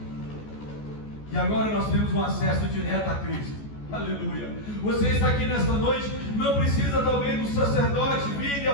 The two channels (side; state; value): right; late; 14 ms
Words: e agora nós temos um acesso direto a Cristo. Aleluia. Você está aqui nesta noite, não precisa talvez do sacerdote vir e